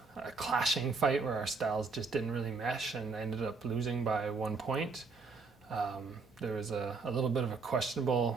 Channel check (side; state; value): left; quieter; 4.4 dB